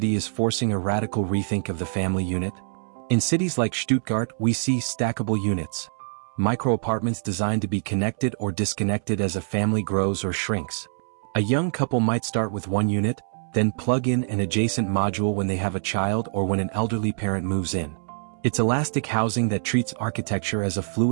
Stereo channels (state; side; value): silent; left; 62 dB below the other